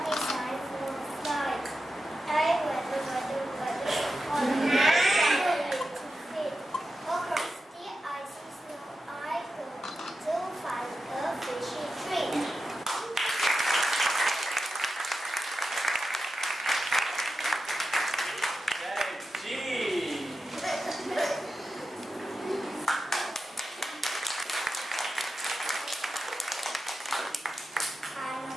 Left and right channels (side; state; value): both; normal; correlation 0.91